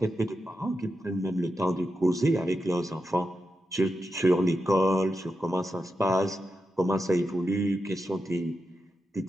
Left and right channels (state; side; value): normal; both; correlation 0.88